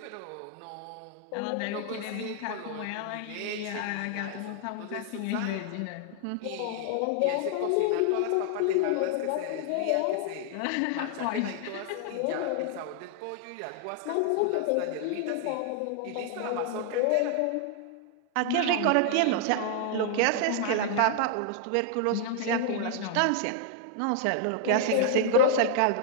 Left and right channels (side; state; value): both; different; correlation 0.00